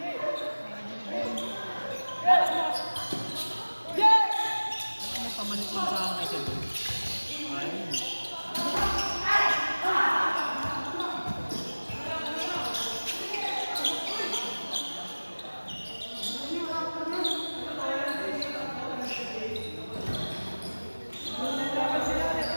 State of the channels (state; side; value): inverted; both; correlation -1.00